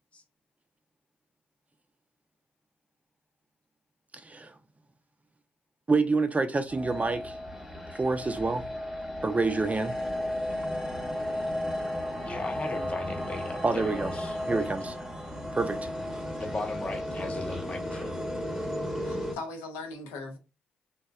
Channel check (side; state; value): both; normal; correlation 0.89